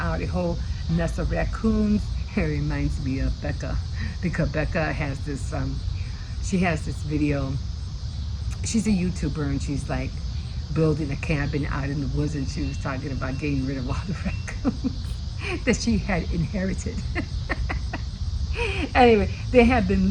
a whole nest of raccoons." It reminds me of Becca, because Becca has this, she has this video. She's a YouTuber and she's like building a cabin out in the woods, and she was talking about getting rid of all the raccoons that she had inherited. Anyway, they had been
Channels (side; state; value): both; identical; correlation 1.00